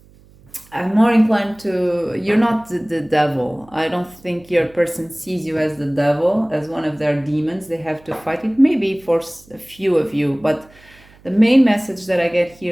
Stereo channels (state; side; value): noise; right; hum, 27 dB below the sound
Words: I'm more inclined to, you're not the devil. I don't think your person sees you as the devil, as one of their demons. They have to fight it, maybe for a few of you. But the main message that I get